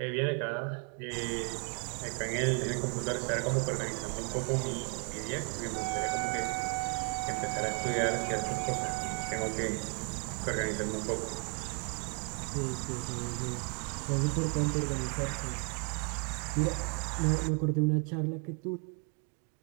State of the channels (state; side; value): quieter; left; 38.3 dB